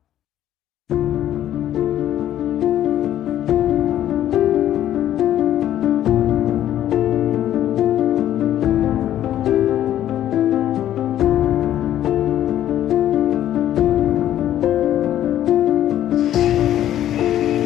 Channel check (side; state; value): right; quieter; 11.9 dB